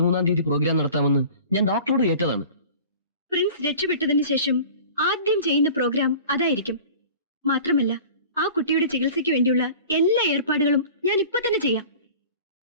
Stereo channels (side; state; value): both; inverted; correlation -0.42